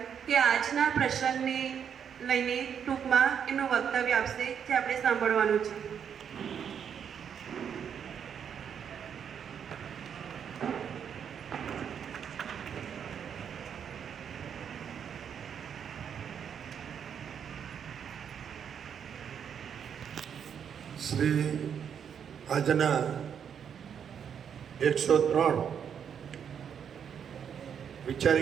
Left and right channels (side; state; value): left; quieter; 7.9 dB